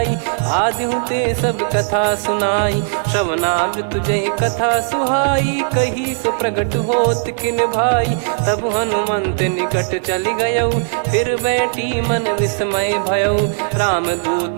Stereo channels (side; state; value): left; silent; digital silence